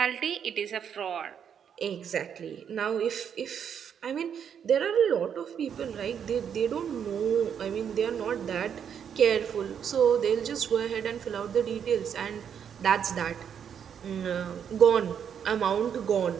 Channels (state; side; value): quieter; left; 8.1 dB